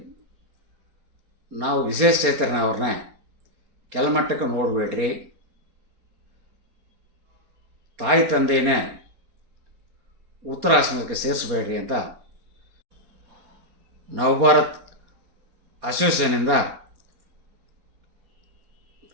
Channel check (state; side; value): late; left; 4.3 ms